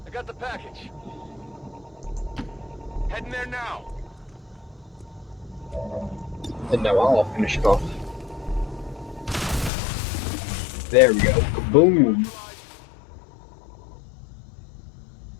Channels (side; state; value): right; drops out; at 9.7 s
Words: I got the package. Heading there now. And now I'll finish it off. There we go. Kaboom!